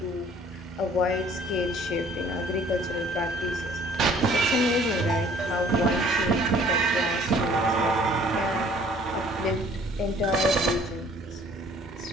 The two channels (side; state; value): both; normal; correlation 0.55